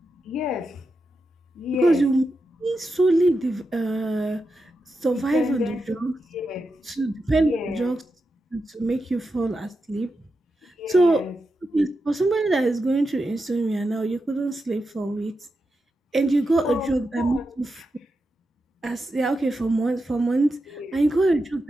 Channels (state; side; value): normal; both; correlation 0.88